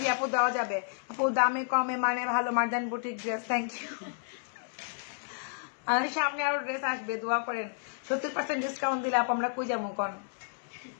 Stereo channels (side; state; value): right; silent; 57 dB below the other